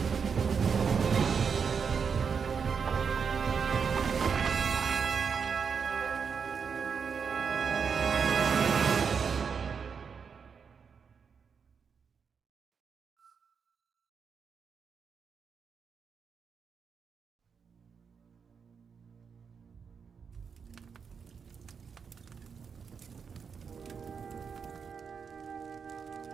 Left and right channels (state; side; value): quieter; left; 6.2 dB